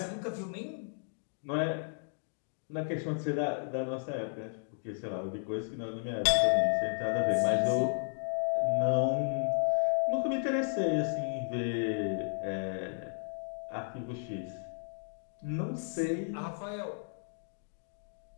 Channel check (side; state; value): right; silent; digital silence